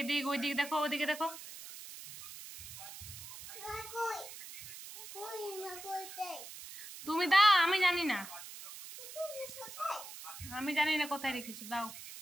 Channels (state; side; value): noise; right; hiss, 12 dB below the sound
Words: এদিক ওইদিক দেখো, ওদিকে দেখো। তুমি দাও, আমি জানি না। আমি জানি না কোথায় রেখেছো, দাও।